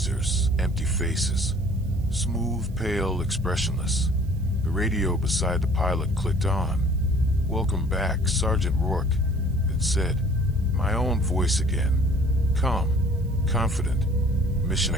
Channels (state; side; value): noise; right; hiss, 29 dB below the sound